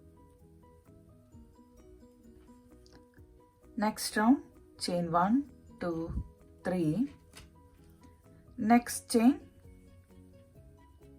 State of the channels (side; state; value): both; identical; correlation 1.00